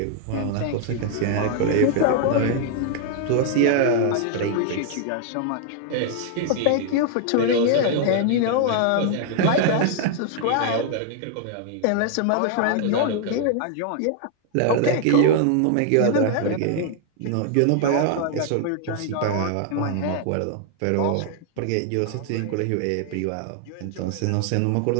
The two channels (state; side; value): different; both; correlation 0.00